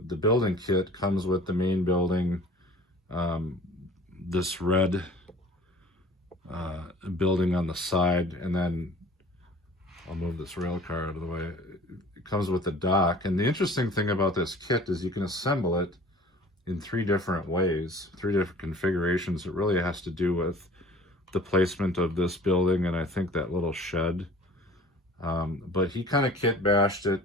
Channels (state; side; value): normal; both; correlation 0.46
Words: building kit comes with the main building, this red building on the side, and then I'll move this rail car out of the way. It comes with the dock. And the interesting thing about this kit is you can assemble it in 3 different ways, 3 different configurations. It really has to do with the placement of this building and I think that little shed. But he kind of kit bashed it.